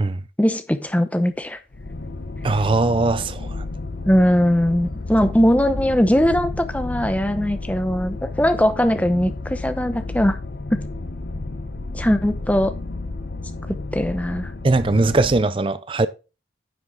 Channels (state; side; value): normal; both; correlation 0.88